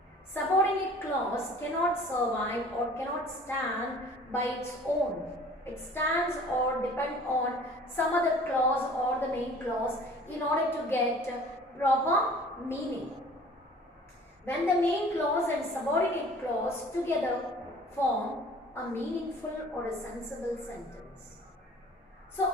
Subordinate clause cannot survive or cannot stand by its own. It stands or depends on some other clause or the main clause in order to get proper meaning. When the main clause and subordinate clause together form a meaningful or a sensible sentence. So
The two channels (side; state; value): both; normal; correlation 0.49